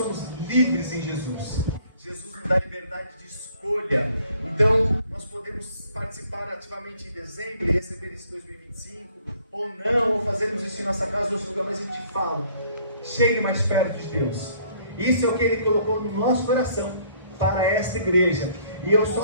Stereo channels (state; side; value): inverted; both; correlation -0.61